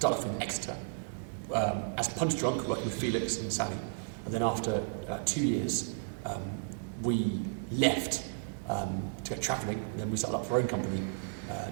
off in Exeter as punch drunk, working with Felix and Sally. And then after 2 years, we left to go travelling, and then we started up our own company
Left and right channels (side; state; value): left; silent; 55 dB below the other